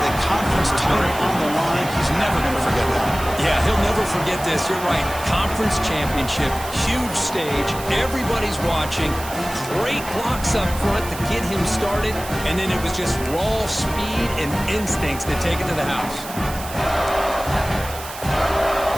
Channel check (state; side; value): noise; right; hiss, 12 dB below the sound